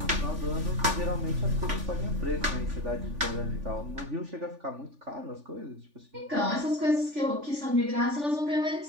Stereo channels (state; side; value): late; left; 3.4 ms